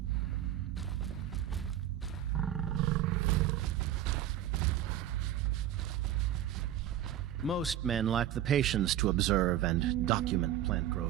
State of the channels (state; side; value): quieter; left; 11.6 dB